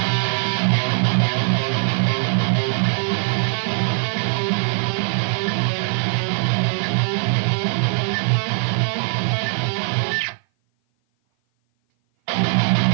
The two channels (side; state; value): left; silent; 57 dB below the other